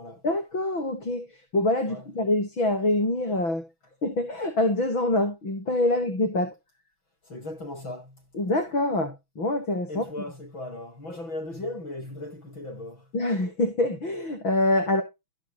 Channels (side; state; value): right; late; 6.1 ms